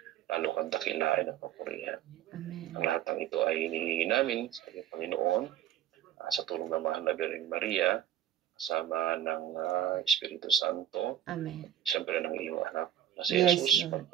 lalo kang dakilain at papurihan. Amen. Ang lahat ng ito ay hinihingi namin sa iyong Panginoon sa tulong ng Mahal na Birheng Maria, kasama ng Espiritu Santo, Amen. siyempre ng iyong anak na si Yes, Jesus, Lord.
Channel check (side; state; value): left; quieter; 11.1 dB